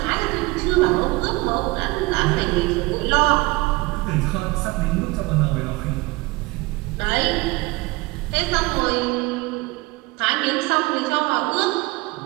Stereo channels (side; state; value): left; quieter; 23.1 dB